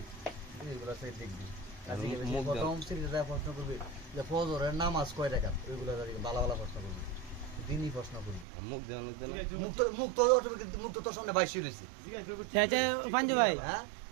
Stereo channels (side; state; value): left; drops out; at 8.5 s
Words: এইগুলো সে দেখবি। প্রথম সিঁড়িটা প্রশ্ন করবি যে ফজরের নামাজ কয় রাকাত, ওইগুলো ভালো ভালো প্রশ্ন করবি, দিনই প্রশ্ন করবি। মুখ দেওয়ানোর জন্য মুখ তো সামনে বাইশি রয়েছে। পাঞ্জু ভাই